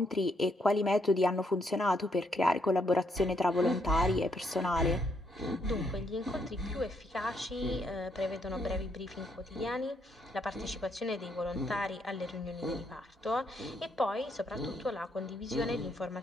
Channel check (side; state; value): both; normal; correlation 0.74